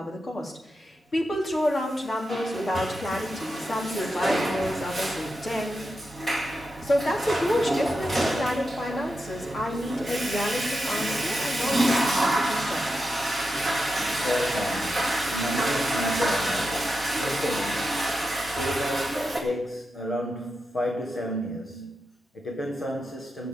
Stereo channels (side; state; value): both; normal; correlation 0.88